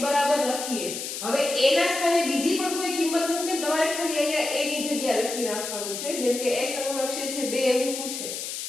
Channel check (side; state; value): left; noise; hiss, 6 dB below the sound